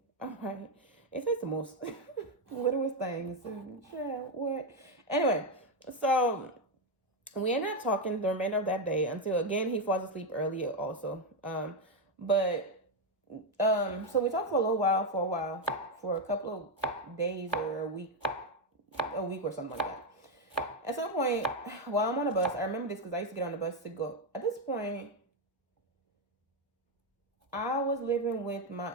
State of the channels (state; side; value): normal; both; correlation 0.05